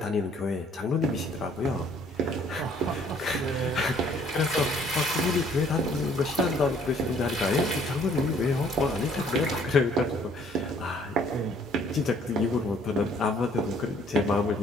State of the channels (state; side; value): normal; both; correlation 0.60